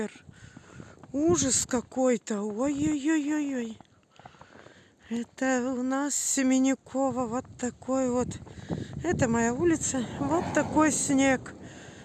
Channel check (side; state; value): both; identical; correlation 1.00